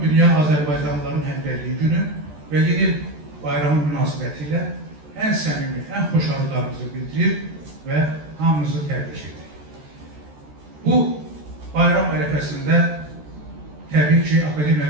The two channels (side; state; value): left; late; 13 ms